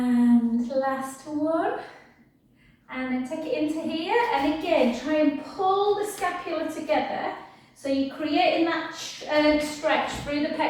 last one. And then take it into here. And again, try and pull the scapula together. So you're creating that stretch through the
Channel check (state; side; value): identical; both; correlation 1.00